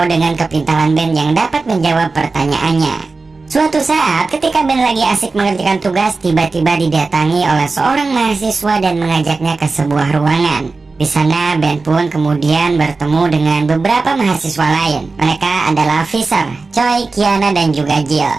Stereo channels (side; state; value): left; quieter; 3.9 dB